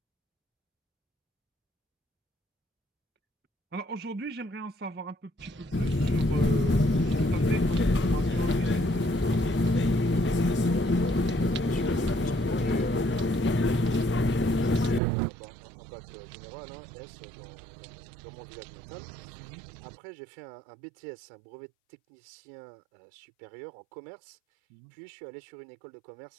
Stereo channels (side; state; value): left; drops out; at 15.0 s